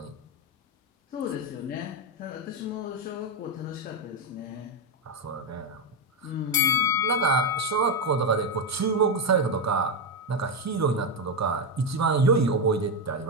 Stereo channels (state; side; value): normal; both; correlation 0.07